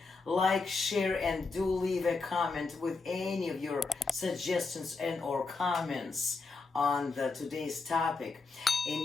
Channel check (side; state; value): right; quieter; 4.1 dB